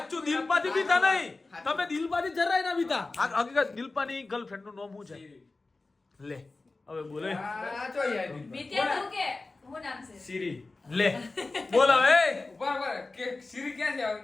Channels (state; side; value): quieter; right; 3.4 dB